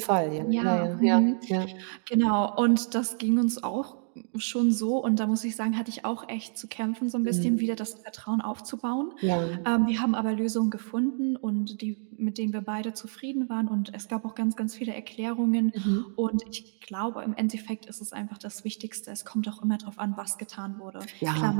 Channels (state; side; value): silent; left; 59 dB below the other